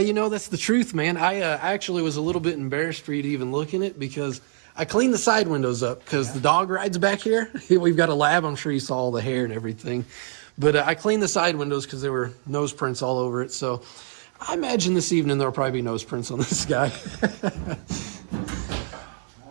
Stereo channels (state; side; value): silent; left; digital silence